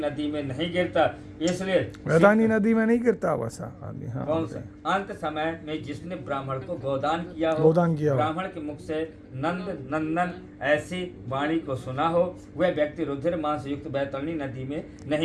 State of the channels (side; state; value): both; identical; correlation 1.00